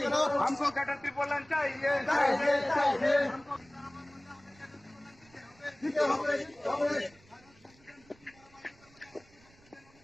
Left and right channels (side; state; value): right; noise; rumble, 28 dB below the sound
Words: करो। हमको गटर त्रिपोलन चाहिए, चाहिए, चाहिए।